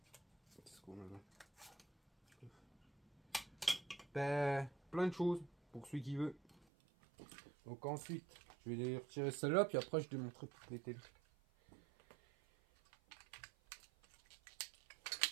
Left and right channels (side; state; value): left; drops out; at 6.6 s